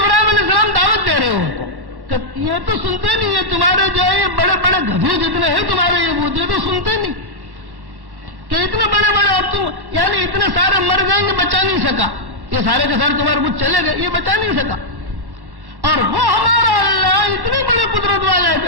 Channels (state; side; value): late; left; 1.1 ms